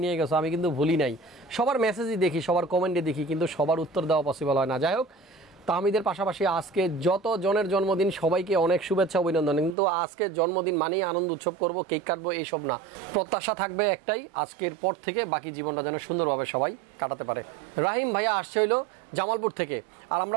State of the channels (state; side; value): drops out; left; at 9.8 s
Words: নিয়ে গেছো, আমি কিন্তু ভুলি নাই। সবার মেসেজই দেখি, সবার কমেন্টে দেখি, কিন্তু সবার উত্তর দেওয়া পসিবল হয় না। যাই হোক, তাহমিদের পাশাপাশি আজকে যত জনের জন্মদিন সবাইকে অনেক শুভেচ্ছা অভিনন্দন। কিন্তু আজকে জন্মদিন মানেই আনন্দ উৎসব করব, কেক কাটবো, এইসব না। প্রত্যাশা থাকবে একটাই, আজকের পর থেকে বাকি জীবনটা যেন সুন্দরভাবে সবাই কাটাতে পারে। রাহিম ভাইয়া আসছে হইলো জামালপুর থেকে, আর